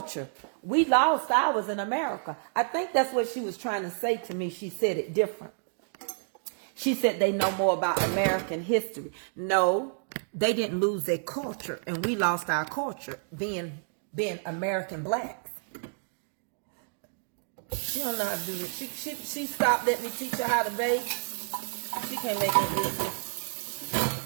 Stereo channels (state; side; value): silent; left; digital silence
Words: We lost ours in America. I think that's what she was trying to say to me. She said it different. She said they know more about American history. No, they didn't lose their culture, and we lost our culture being American blacks. She don't know how to do this. She stopped letting me teach her how to bake. She can't make no biscuits.